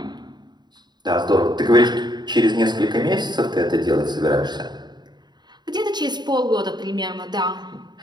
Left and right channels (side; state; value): left; late; 0.21 ms